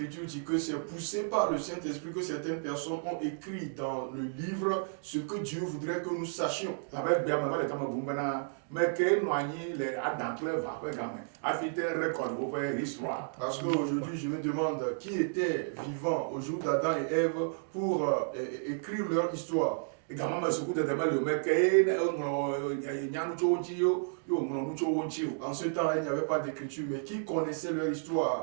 dit que c'est poussé par le Saint-Esprit que certaines personnes ont écrit dans le livre ce que Dieu voudrait que nous sachions. Parce qu'aujourd'hui, je me demande qui était vivant au jour d'Adam et Ève pour écrire leur histoire. En ce temps-là, il n'y avait pas d'écriture, mais qui connaissait leur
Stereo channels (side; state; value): left; silent; digital silence